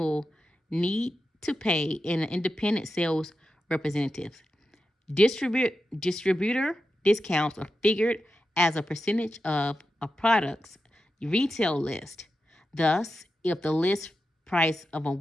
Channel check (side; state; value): both; normal; correlation 0.90